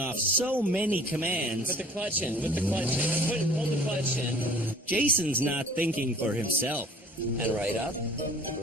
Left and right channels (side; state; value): both; normal; correlation 0.51